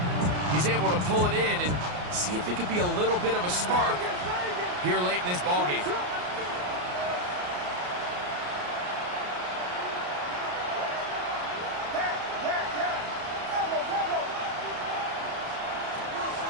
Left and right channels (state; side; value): late; left; 33 ms